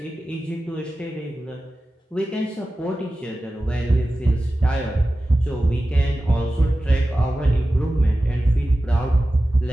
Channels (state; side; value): normal; both; correlation 0.95